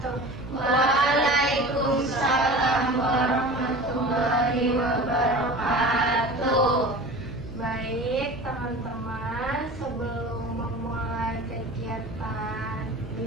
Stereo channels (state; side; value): noise; right; hum, 14 dB below the sound